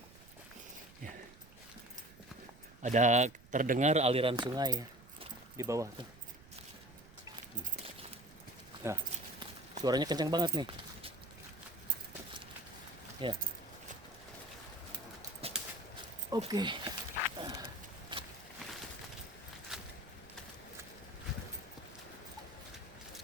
Ya. Ada terdengar aliran sungai ya di bawah tuh. Nah, suaranya kencang banget nih. Ya. Oke.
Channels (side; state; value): right; noise; rumble, 21 dB below the sound